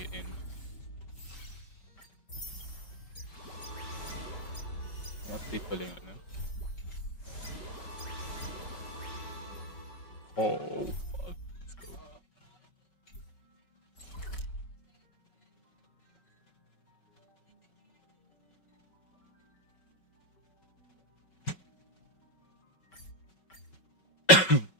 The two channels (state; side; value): late; right; 5.4 ms